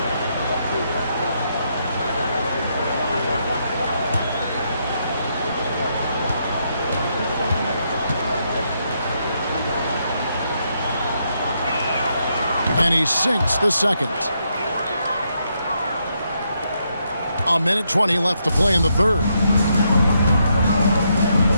And he sinks the second. A minute 20 left to play in the third.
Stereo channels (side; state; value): both; inverted; correlation -0.78